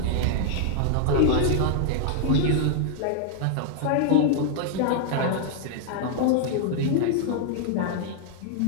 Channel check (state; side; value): different; both; correlation 0.00